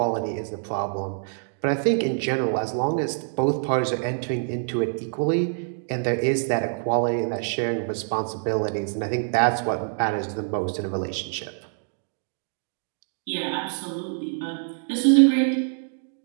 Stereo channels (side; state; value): left; silent; 61 dB below the other